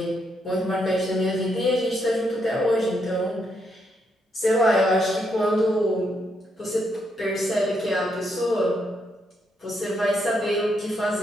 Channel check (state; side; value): normal; both; correlation 0.78